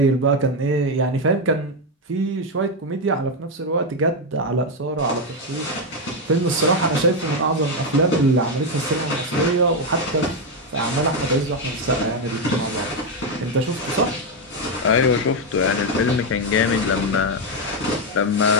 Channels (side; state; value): both; normal; correlation 0.06